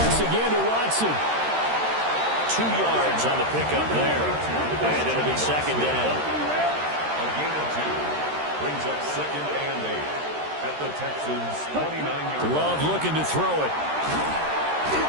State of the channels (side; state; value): left; late; 13 ms